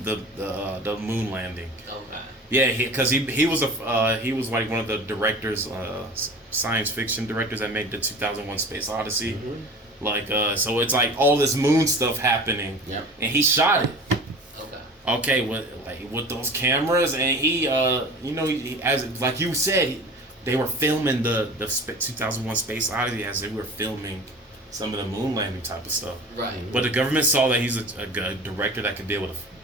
the moon landing. Okay. Yeah, because he was one of the directors, science fiction directors that made the 2001 Space Odyssey. So it's all this moon stuff happening. Yep. And he shot it. Okay. with those cameras, and he as like you said, they were filming the 2001 Space Odyssey as they were filming some of the moon landing type of stuff. Right. But the government saw that he's a good director that could be able to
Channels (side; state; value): both; normal; correlation 0.38